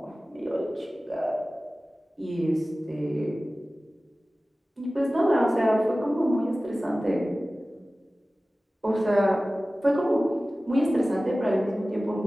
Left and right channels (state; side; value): normal; both; correlation 0.97